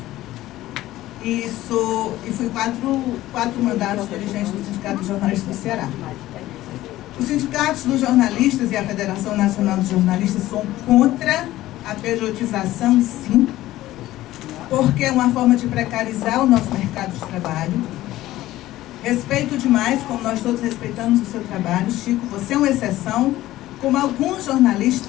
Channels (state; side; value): quieter; right; 15.6 dB